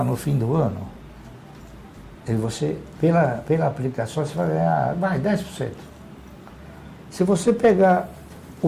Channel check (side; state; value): both; identical; correlation 1.00